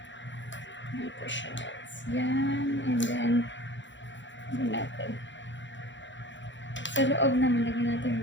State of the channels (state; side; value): late; right; 0.54 ms